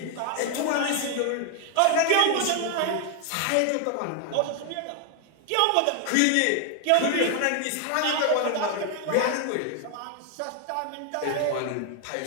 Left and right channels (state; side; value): different; both; correlation 0.00